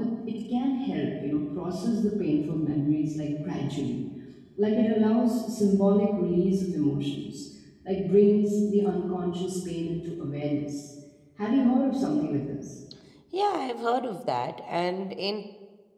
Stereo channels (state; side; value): identical; both; correlation 1.00